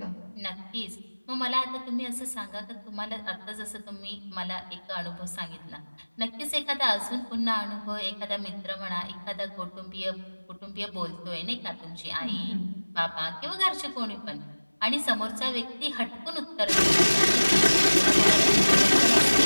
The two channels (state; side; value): inverted; both; correlation -1.00